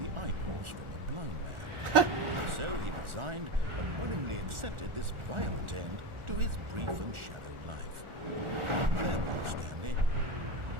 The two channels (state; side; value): late; left; 1.4 ms